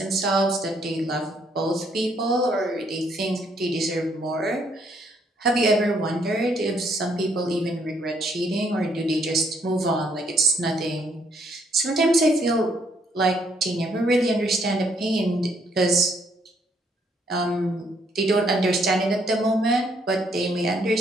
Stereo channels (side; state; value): both; normal; correlation 0.70